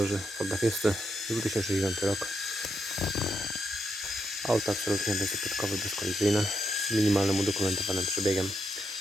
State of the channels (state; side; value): normal; both; correlation 0.82